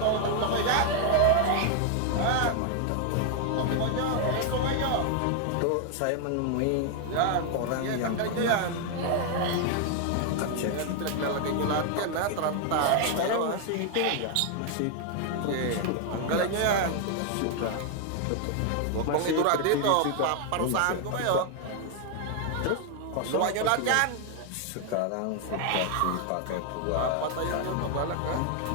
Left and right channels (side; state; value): both; different; correlation 0.00